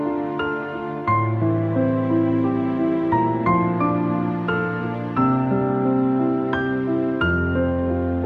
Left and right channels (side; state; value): both; identical; correlation 1.00